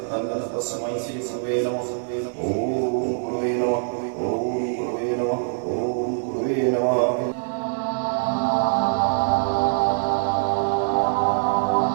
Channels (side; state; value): left; silent; digital silence